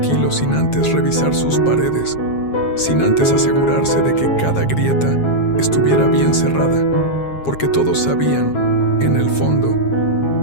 sin antes revisar sus paredes, sin antes asegurarse de que cada grieta estuviera bien cerrada, porque todos sabían, en el fondo,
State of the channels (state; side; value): late; right; 7.4 ms